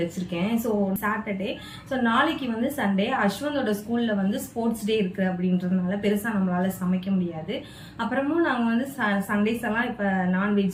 வச்சுருக்கேன். ஸோ சாட்டர்டே, ஸோ நாளைக்கு வந்து சண்டே, அஸ்வந்தோட ஸ்கூலில் வந்து ஸ்போர்ட்ஸ் டே இருக்குது அப்படின்றதுனால பெருசாக நம்மளால் சமைக்க முடியாது. அப்புறமும் நாங்கள் வந்து சண்டேஸ் எல்லாம் இப்போ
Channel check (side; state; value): both; identical; correlation 1.00